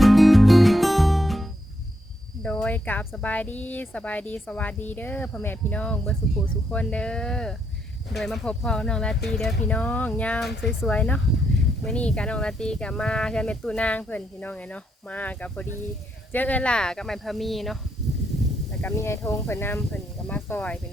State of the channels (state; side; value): normal; both; correlation 0.78